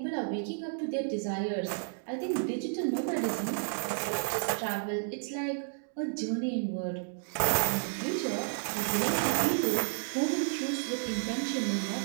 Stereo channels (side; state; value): left; silent; digital silence